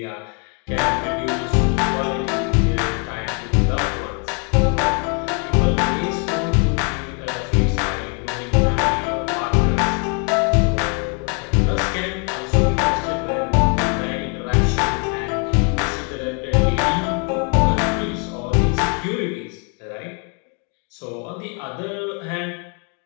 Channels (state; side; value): quieter; right; 38.2 dB